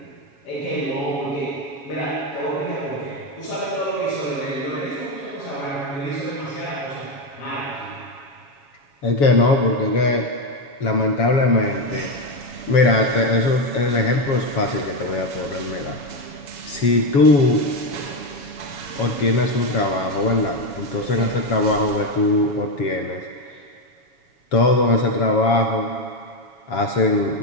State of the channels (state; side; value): late; right; 7.2 ms